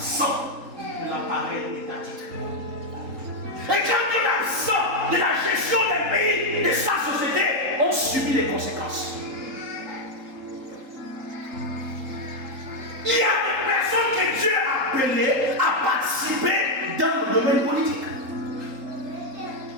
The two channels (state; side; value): late; left; 3.8 ms